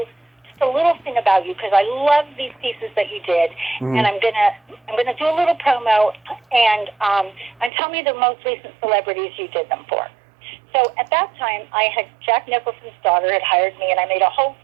a little thing about you because I love these pieces that you did, and I'm gonna do a little promo and tell me the most recent celebrities you did them for. So at that time, Jack Nicholson's daughter had hired me, and I made a whole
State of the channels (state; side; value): drops out; left; at 7.7 s